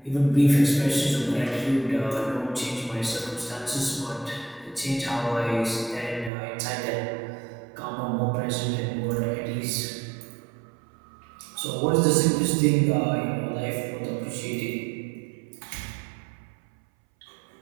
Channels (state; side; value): drops out; left; at 6.3 s